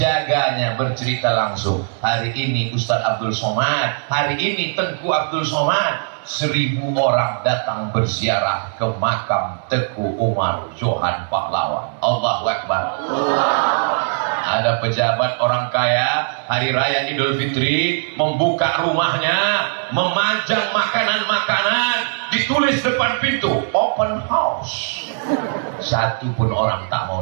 bercerita langsung, hari ini Ustadz Abdul Somad, hari ini Tengku Abdul Somad, 1000 orang datang berziarah ke makam Teguh Umar Johan Pahlawan. Allahu Akbar. Ada pejabat orang kaya, hari raya Idul Fitri, membuka rumahnya, memajang makanan-makanan, ditulis depan pintu, open house. Satu pun orang tak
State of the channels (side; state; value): left; silent; 63 dB below the other